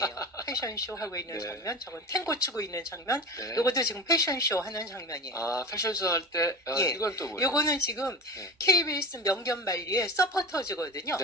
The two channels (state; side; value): normal; both; correlation 0.31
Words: 패션 쇼 하고 있는 네. 장면, 저건 탱고 추고 있는 장면, 네. 요것도 지금 패션 쇼 하는 장면이에요. 패션쇼 할 때 예. 이건 또 뭐예요? 요거는 지금 네. KBS 명견말리의 서포터즈거든요.